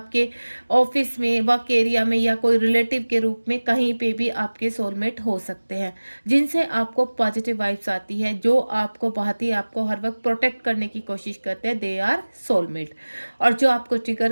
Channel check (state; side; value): inverted; both; correlation -1.00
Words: ऑफिस में, वर्क एरिया में, या कोई रिलेटिव के रूप में, कहीं पे भी आपके सोलमेट हो सकते हैं, जिनसे आपको पॉजिटिव वाइब्स आती है, जो आपको बहुत ही आपको हर वक्त प्रोटेक्ट करने की कोशिश करते हैं, दे आर सोलमेट। और जो आपको